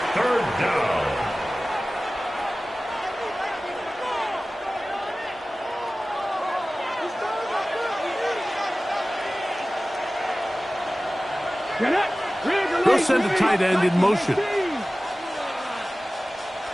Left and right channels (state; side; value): normal; both; correlation 0.97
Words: 3rd down. They'll send a tight end in motion.